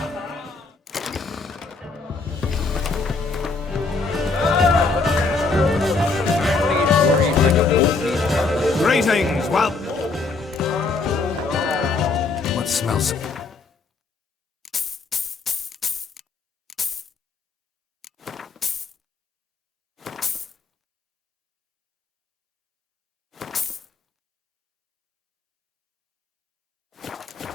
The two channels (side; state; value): right; quieter; 4.0 dB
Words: Greetings, well... What smells...